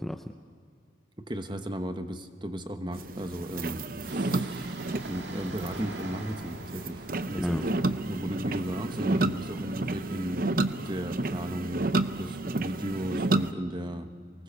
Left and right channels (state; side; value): normal; both; correlation 0.70